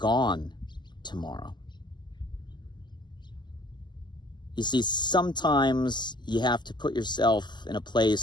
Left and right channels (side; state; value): right; late; 0.21 ms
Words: tomorrow? You see, sometimes you have to put yourself in a